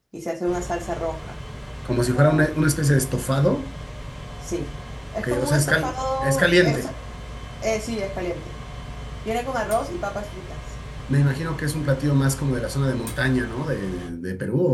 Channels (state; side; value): identical; both; correlation 1.00